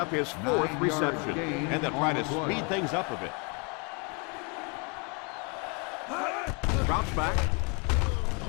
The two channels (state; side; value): quieter; right; 33.3 dB